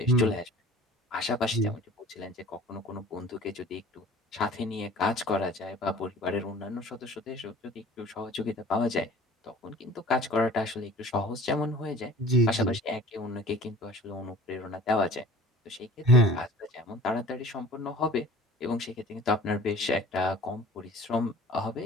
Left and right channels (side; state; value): both; normal; correlation 0.46